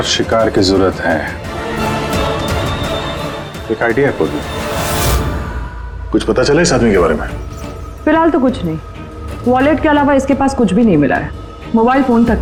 शिकार की जरूरत है। एक आइडिया है पूरी। कुछ पता चला इस आदमी के बारे में? फिलहाल तो कुछ नहीं। वॉलेट के अलावा इसके पास कुछ भी नहीं मिला है, मोबाइल फोन तक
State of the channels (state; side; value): identical; both; correlation 1.00